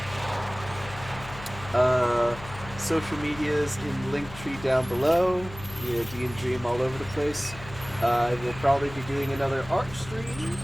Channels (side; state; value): left; noise; hum, 14 dB below the sound